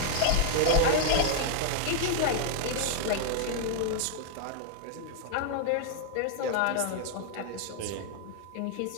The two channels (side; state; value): both; different; correlation 0.00